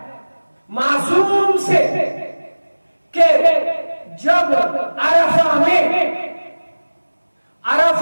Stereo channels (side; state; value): both; inverted; correlation -1.00